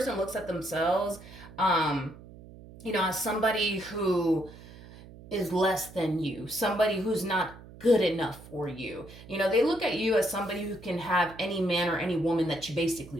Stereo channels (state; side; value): noise; right; hum, 18 dB below the sound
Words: looks at themselves, as somebody who is less than you, somebody who's not good enough for you. They look at you as somebody who can have any man or any woman that you